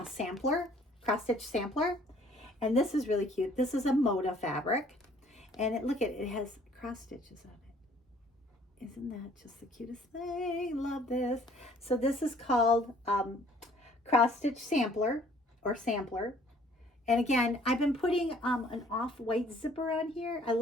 stitch sampler. And this is really cute. This is a Moda fabric. And it has cross stitches on it. Isn't that just the cutest thing? Love this. So this is called cross stitch sampler. And again, I've been putting an off-white zipper on here. I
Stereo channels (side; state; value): both; normal; correlation 0.58